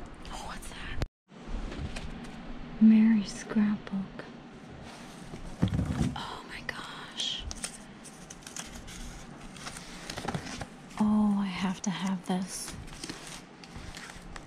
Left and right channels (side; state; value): both; identical; correlation 1.00